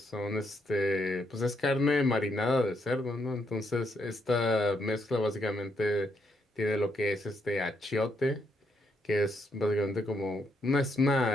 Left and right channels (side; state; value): both; normal; correlation 0.76